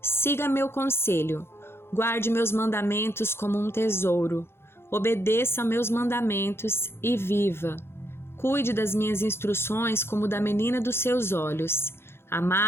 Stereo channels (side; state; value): right; late; 0.12 ms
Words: siga meu conselho. Guarde meus mandamentos como um tesouro. Obedeça a meus mandamentos e viva. Cuide das minhas instruções como da menina dos seus olhos.